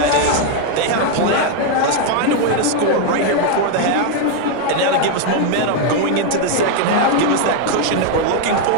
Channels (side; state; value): both; different; correlation 0.01